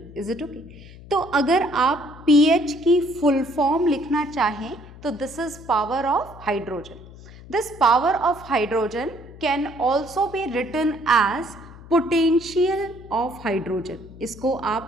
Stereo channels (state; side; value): noise; left; hum, 18 dB below the sound